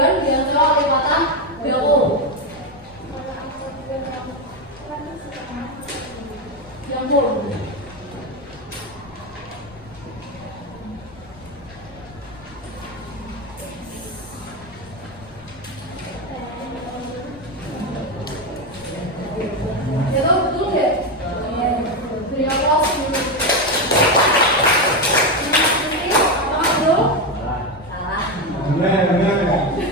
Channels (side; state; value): left; noise; rumble, 22 dB below the sound